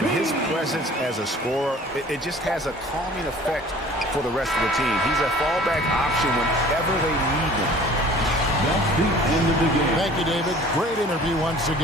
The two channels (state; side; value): normal; both; correlation 0.48